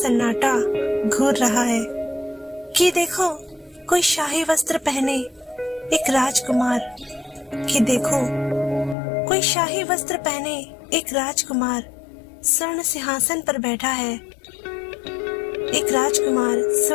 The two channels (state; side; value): drops out; right; at 9.0 s